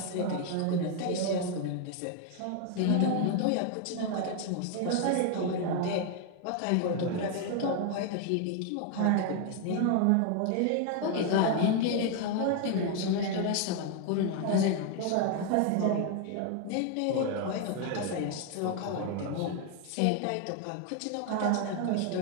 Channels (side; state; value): both; different; correlation 0.01